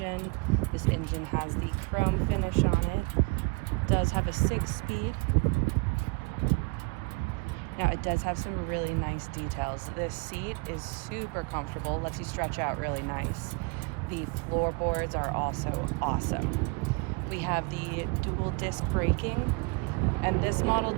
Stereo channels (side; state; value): left; quieter; 30.0 dB